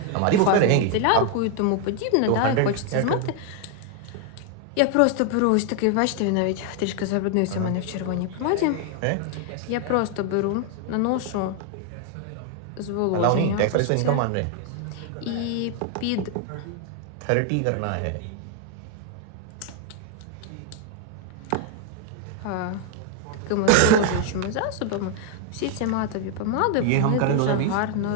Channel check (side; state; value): both; different; correlation 0.00